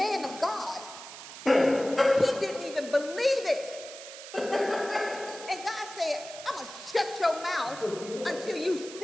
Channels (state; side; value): noise; right; hiss, 13 dB below the sound